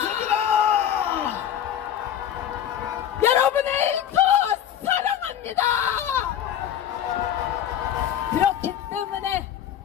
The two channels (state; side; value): quieter; right; 10.2 dB